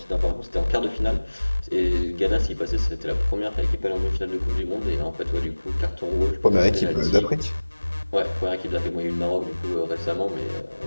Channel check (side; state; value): both; inverted; correlation -1.00